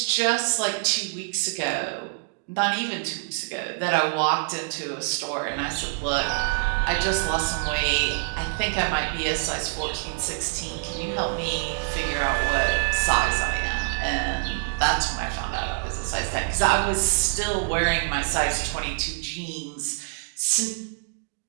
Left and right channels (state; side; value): silent; left; digital silence